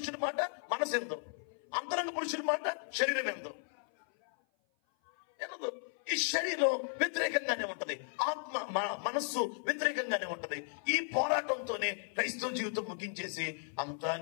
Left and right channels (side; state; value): right; silent; 54 dB below the other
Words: మాట మనసు ఎందు, అంతరంగ పురుషుడి మాట శరీరం ఎందు. ఈ శరీరం వ్యతిరేకంగానే ఉంటది, ఆత్మ మనస్సు వ్యతిరేకంగానే ఉంటది. ఈ పోరాటంతోనే క్రైస్తవ జీవితం ముగించేసి అంతా